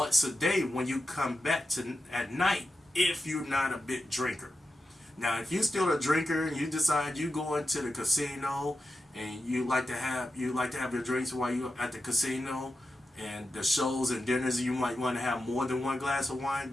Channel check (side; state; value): both; normal; correlation 0.90